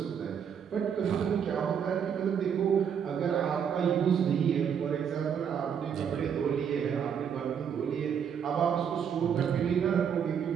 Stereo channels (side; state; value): left; quieter; 7.8 dB